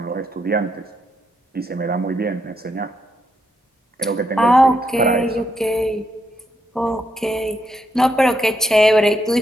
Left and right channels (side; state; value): both; normal; correlation 0.79